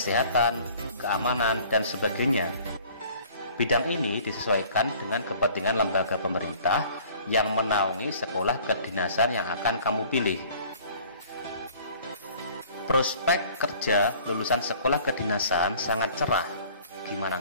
keamanan, dan sebagainya. Bidang ini disesuaikan dengan kepentingan lembaga pemerintah yang menaungi sekolah kedinasan yang akan kamu pilih. Prospek kerja lulusan sekolah kedinasan sangat cerah. Gimana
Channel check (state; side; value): inverted; both; correlation -0.51